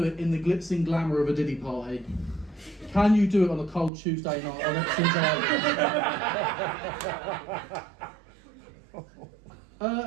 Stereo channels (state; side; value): drops out; left; at 3.9 s